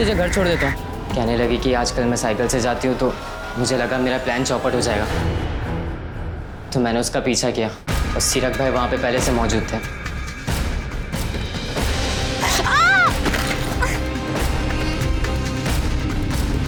घर छोड़ देता हूँ। कहने लगी कि आजकल मैं साइकिल से जाती हूँ तो मुझे लगा मेरा प्लान चौपट हो जाएगा, तो मैंने उसका पीछा किया और सीरक भाई वहाँ पे पहले से मौजूद थे।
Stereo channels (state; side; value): identical; both; correlation 1.00